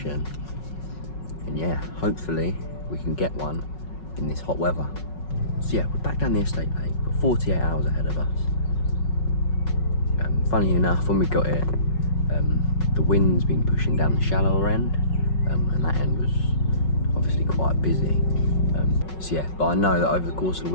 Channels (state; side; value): late; right; 5.4 ms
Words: And yeah, hopefully we can get one in this hot weather. So yeah, we're back down the estate lake, got 48 hours ahead of us. Funny enough, when we got here, the wind's been pushing down the shallower end, and that end was obviously quite busy. So yeah, but I know that over the course of the